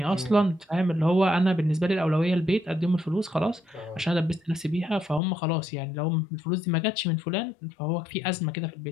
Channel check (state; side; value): drops out; right; at 5.2 s